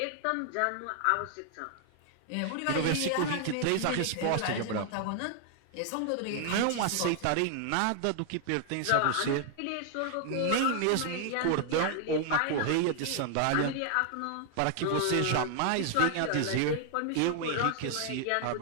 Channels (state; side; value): different; both; correlation 0.00